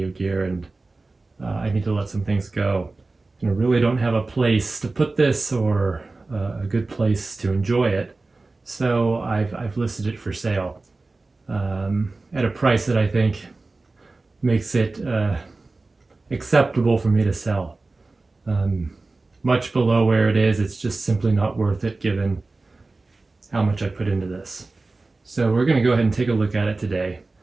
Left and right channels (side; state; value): left; quieter; 3.4 dB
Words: gear and I need to let some things go. And I really don't have a place to put this or a good place to enjoy it. So I've listed it for sale at a price that I think makes it acceptable for me to sell. Much below where it is, it's just simply not worth it given how much I put into this. So we're going to go ahead and take a look at it today